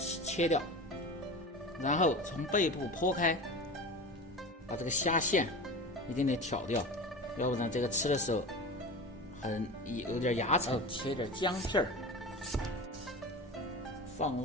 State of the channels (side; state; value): both; normal; correlation 0.30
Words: 切掉，然后从背部剖开，把这个虾线一点点挑掉，要不然这个吃的时候有点牙齿。切点姜片儿，放